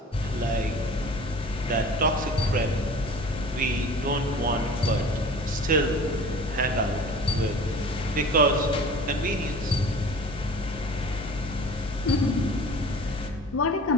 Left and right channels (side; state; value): both; normal; correlation 0.42